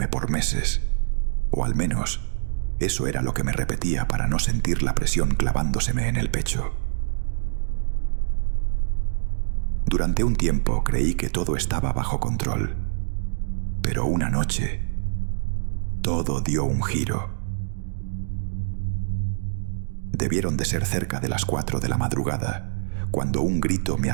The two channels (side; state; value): left; silent; digital silence